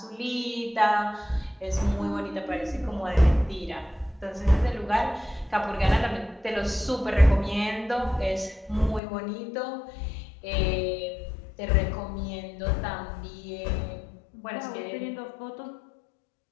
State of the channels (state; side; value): drops out; right; at 9.0 s